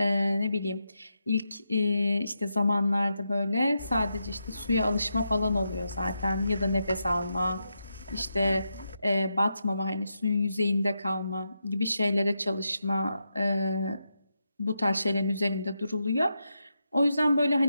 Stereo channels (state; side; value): inverted; both; correlation -0.85